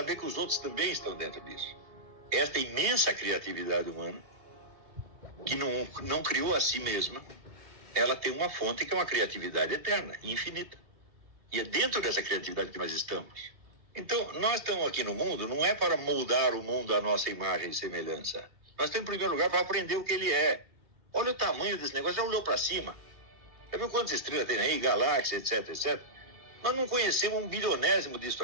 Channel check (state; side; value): late; left; 2.7 ms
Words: que os outros também estão dentro disso. Esta imensa criatividade humana, que não criou a si mesma, ela tem uma fonte que é uma criatividade eterna, infinita. E é dentro dessa criatividade que nós estamos. Então, nós estamos aqui no mundo, não é para moldar o mundo à nossa imagem e semelhança. Nós estamos, em primeiro lugar, para aprender o que ele é. Olha o tamanho desse negócio, já olhou para cima? Já viu quantas estrelas tem aí, galáxias, etc, etc? Nós não conhecemos um bilionésimo disso